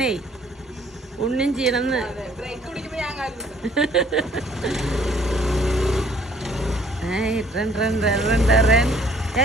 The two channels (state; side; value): normal; both; correlation 0.60